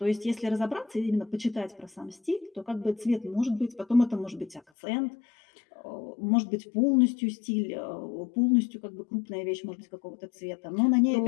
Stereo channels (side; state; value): right; drops out; at 4.6 s